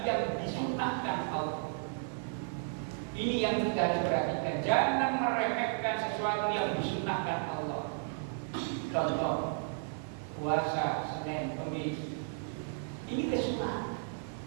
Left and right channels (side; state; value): left; silent; digital silence